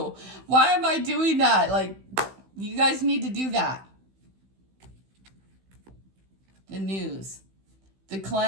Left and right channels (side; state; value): left; late; 16 ms